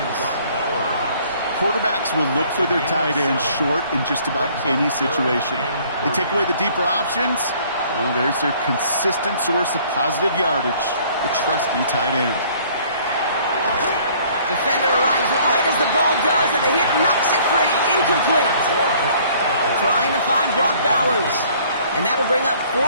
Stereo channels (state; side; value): inverted; both; correlation -0.57